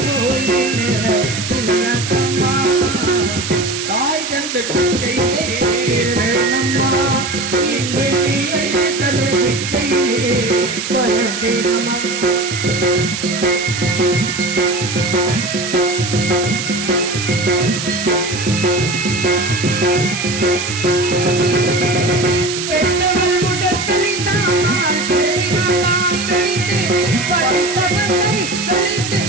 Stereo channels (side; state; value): right; noise; hiss, 5 dB below the sound